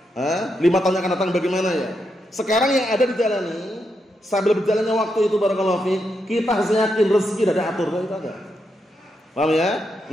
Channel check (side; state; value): both; normal; correlation 0.83